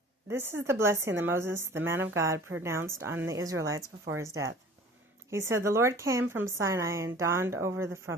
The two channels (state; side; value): normal; both; correlation 0.46